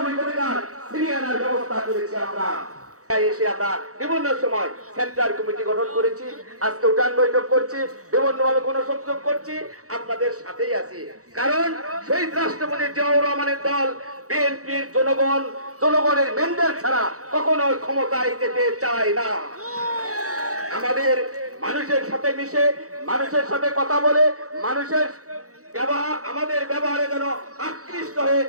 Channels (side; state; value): left; late; 0.65 ms